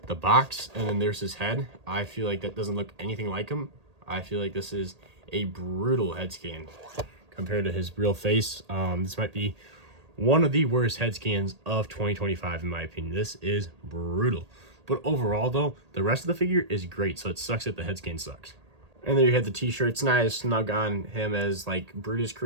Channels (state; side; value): late; left; 1.8 ms